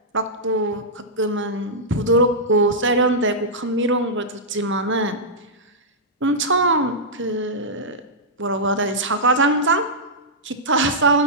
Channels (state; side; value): normal; both; correlation -0.11